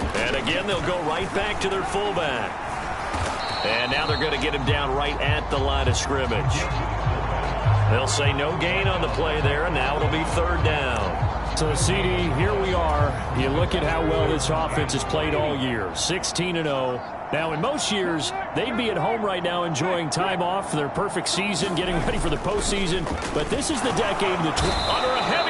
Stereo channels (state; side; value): identical; both; correlation 1.00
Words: Again, they'll go right back to their fullback. And now they're going to get him down right at the line of scrimmage. They'll say no gain on the play there, and now it'll be 3rd down. So, CD, here we are. You look at how well this offense has played all year, 16-0. Now, in most years, they'd be at home right now enjoying time off for their perfect season, getting ready for the postseason. But this is the decade of the under a